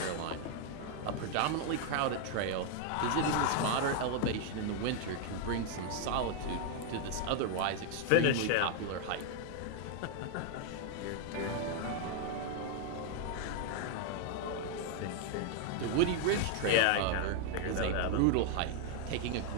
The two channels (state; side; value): different; both; correlation 0.01